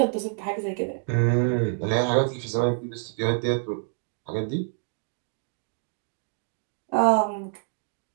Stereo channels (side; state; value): left; silent; digital silence